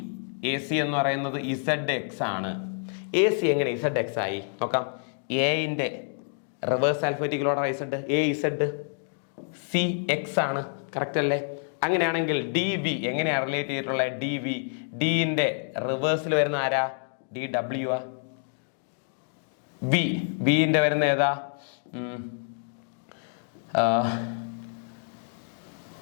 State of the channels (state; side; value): silent; right; 58 dB below the other